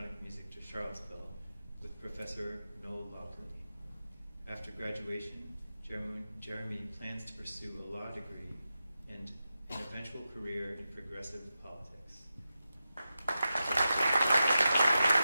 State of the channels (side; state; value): both; inverted; correlation -0.91